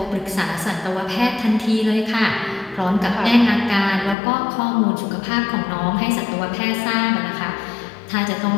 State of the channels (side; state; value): right; drops out; at 4.2 s